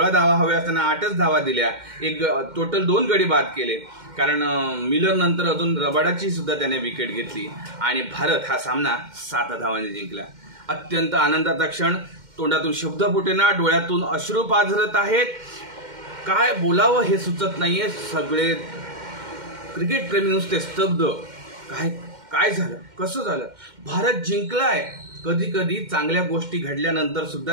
धावा हव्या असताना 8च धावा दिल्या. एक टोटल 2 गडी बाद केले कारण मिलर नंतर अजून रबाडाची सुद्धा त्याने विकेट घेतली आणि भारत हा सामना 7 धावांनी जिंकला. अत्यंत आनंदाचा क्षण. तोंडातून शब्द फुटेना, डोळ्यातून अश्रू पाझरत आहेत. काय बोलावं हे सुचत नाहीये. सगळे क्रिकेट प्रेमी नुसते स्तब्ध. काय झालं, कसं झालं, भारत जिंकलाय. कधी कधी चांगल्या गोष्टी घडल्यानंतर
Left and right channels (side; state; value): left; late; 2.1 ms